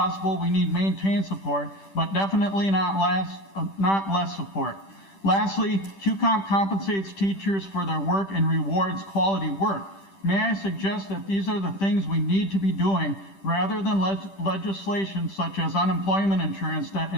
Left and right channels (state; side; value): late; right; 10 ms